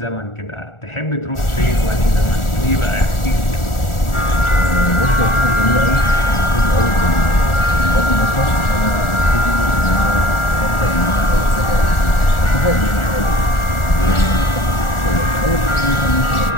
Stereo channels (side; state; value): right; late; 1.4 ms